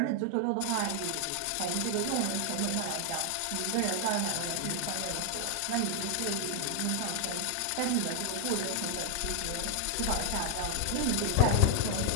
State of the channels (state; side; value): different; both; correlation 0.00